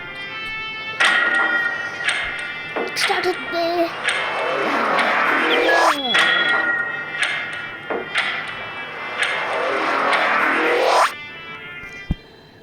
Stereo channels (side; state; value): both; identical; correlation 1.00